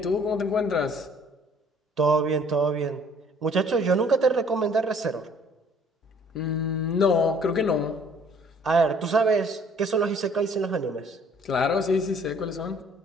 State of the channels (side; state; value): both; normal; correlation 0.57